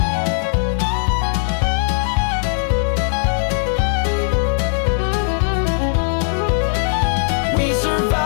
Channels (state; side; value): silent; right; digital silence